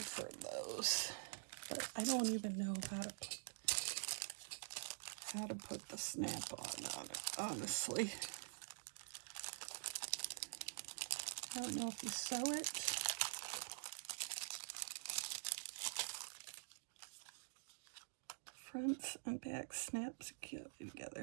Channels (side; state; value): left; silent; digital silence